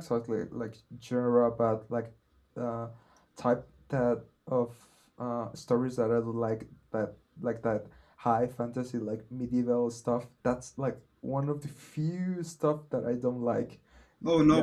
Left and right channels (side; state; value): both; identical; correlation 1.00